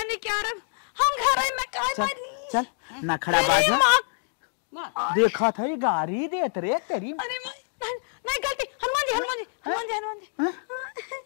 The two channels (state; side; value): silent; right; digital silence